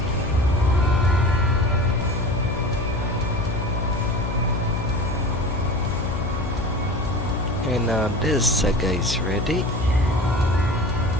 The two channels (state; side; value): noise; left; hum, 6 dB below the sound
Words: And now this saga is ready.